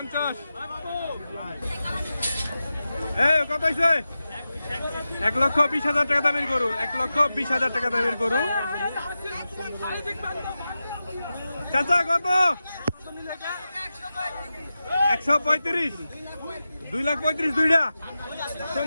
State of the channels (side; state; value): both; inverted; correlation -0.92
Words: এই কত হয়েছে? 1,20,000 টাকা দামের গরু। 1,20,000 টাকা দামের গরু। চাচা কত? 135 2,35,000 দুইটা।